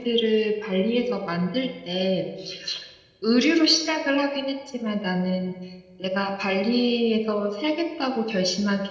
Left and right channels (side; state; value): both; identical; correlation 1.00